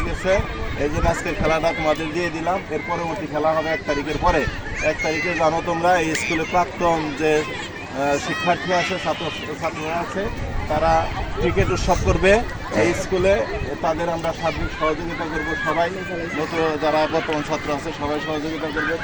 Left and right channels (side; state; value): both; identical; correlation 1.00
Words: গেছে, এই জন্য আজকের খেলাটা তোমাদের দিয়ে দিলাম। এর পরবর্তী খেলা হবে 1 তারিখের পরে। 1 তারিখে জানো তোমরা এই স্কুলে প্রাক্তন যে শিক্ষার্থী আছে, ছাত্ররা আছে, তারা ক্রিকেট উৎসব করবে এই স্কুলে, তাদের আমরা সার্বিক সহযোগিতা করব। সবাই নতুন যারা বর্তমান ছাত্র আছে সবাই সহযোগিতা করবে,